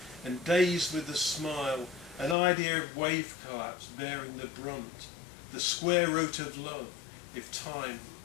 and dazed with the smile, an idea of wave collapse bearing the brunt, the square root of love, if time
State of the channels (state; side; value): drops out; right; at 2.4 s